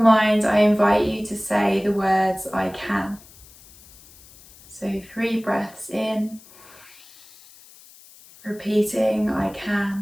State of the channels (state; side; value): noise; left; hiss, 23 dB below the sound